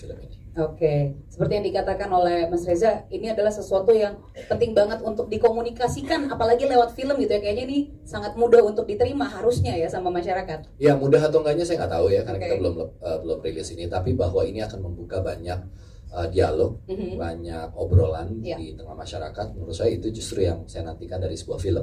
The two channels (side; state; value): both; identical; correlation 1.00